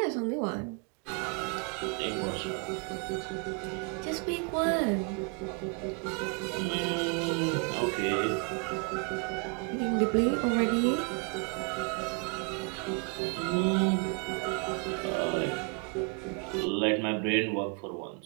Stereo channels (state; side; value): quieter; left; 33.6 dB